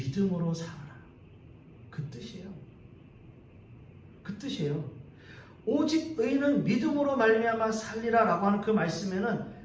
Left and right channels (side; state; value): both; identical; correlation 1.00